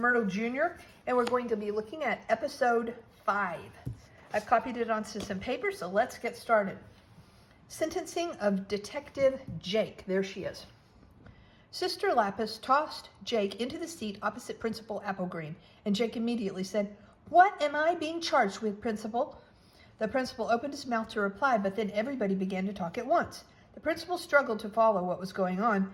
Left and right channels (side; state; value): both; identical; correlation 1.00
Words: Jr. and we're going to be looking at Episode 5. I've copied it onto some paper, so let's get started. Sentencing of Detective Jake. There she is. Sister Lapis tossed Jake into the seat opposite Principal Applegreen, and Jake immediately said, "What am I being charged with, Principal?" The principal opened his mouth to reply, but then everybody began to talk at once. The principal struggled to follow what was going